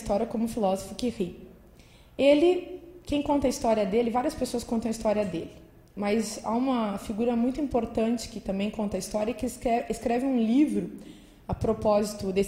como o filósofo que ri. Quem conta a história dele, várias pessoas contam a história dele, mas há uma figura muito importante que também conta a história, que escreve um livro a propósito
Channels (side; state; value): both; identical; correlation 1.00